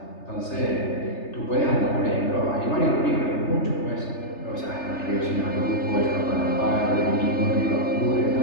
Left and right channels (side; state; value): right; late; 3.3 ms